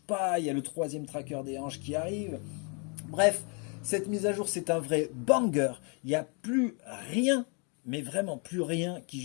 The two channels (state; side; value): quieter; right; 36.3 dB